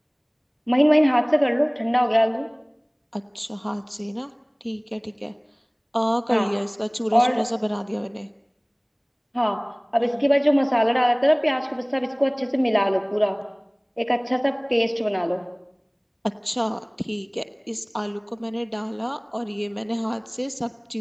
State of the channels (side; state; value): both; identical; correlation 1.00